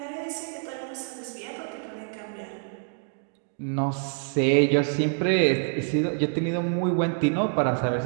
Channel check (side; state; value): left; silent; 56 dB below the other